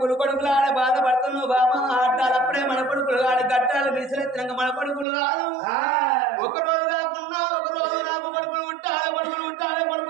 కొడుకులాడ బాధపడుతున్నావు బామా ఆటాలప్పుడే మన కొడుకులు ఆడ గట్టాలు విసిరెత్తినాక మన కొడుకులు కాదు ఒక రోజు కాకున్నా ఒక రోజు నాకు కొడుకులు ఉంటాలి కొడుకులు ఉంటాలి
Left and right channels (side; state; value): left; drops out; at 5.1 s